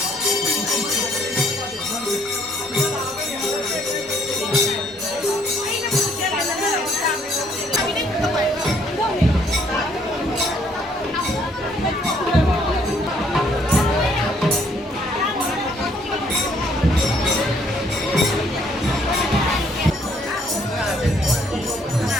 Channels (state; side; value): normal; both; correlation 0.66